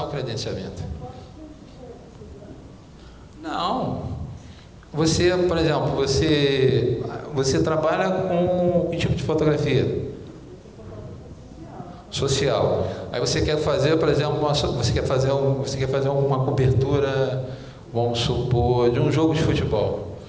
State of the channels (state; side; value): identical; both; correlation 1.00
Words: o credenciamento. Não. Você, por exemplo, você trabalha com que tipo de fotografia? Social. Aí você quer fazer, por exemplo, você quer fazer uma cobertura, vamos supor, de um jogo de futebol.